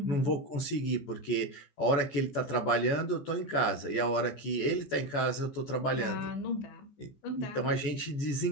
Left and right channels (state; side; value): late; right; 14 ms